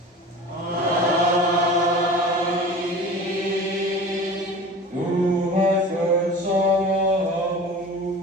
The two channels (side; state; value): both; normal; correlation 0.37